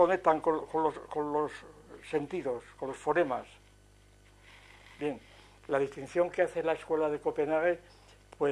los sentidos, con los fonemas? Bien, la distinción que hace la escuela de Copenhague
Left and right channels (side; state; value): both; identical; correlation 1.00